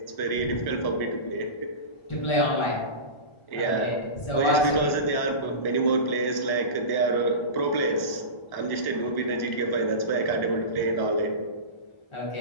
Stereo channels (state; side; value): late; right; 1.1 ms